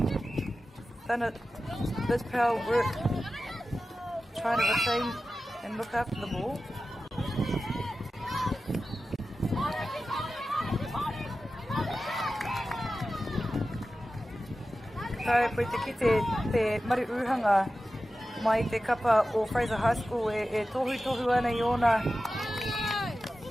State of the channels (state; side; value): normal; both; correlation 0.94